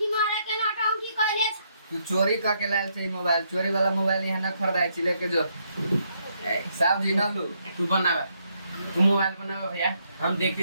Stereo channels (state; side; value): inverted; both; correlation -0.75